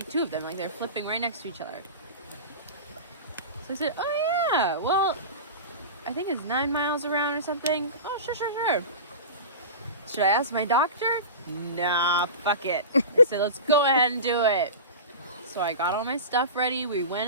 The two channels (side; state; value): both; inverted; correlation -0.30